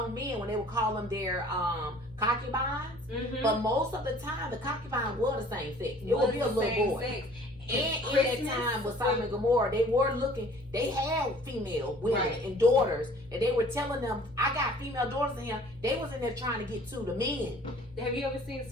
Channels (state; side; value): noise; right; hum, 24 dB below the sound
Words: men when they would call them their concubines, Mhm. but most of the time the concubine was the same sex. It would be a Was the little same boy. sex. And in Christmas, that time with Sodom and Gomorrah, they were looking. They had female women Right. and daughters, and they were telling them, "I got female daughters in here." They was in there trying to get to the men. Have you ever seen